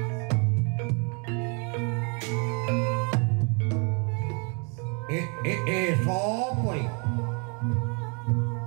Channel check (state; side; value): quieter; left; 35.2 dB